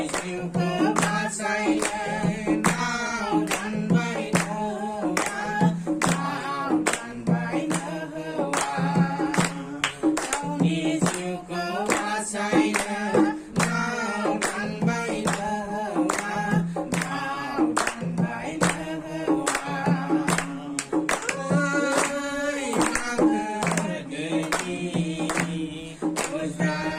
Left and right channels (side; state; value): both; identical; correlation 1.00